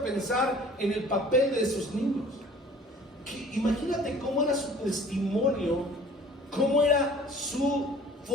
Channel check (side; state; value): both; normal; correlation 0.50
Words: pensar en el papel de esos niños. Imagínate cómo era su testimonio, cómo era su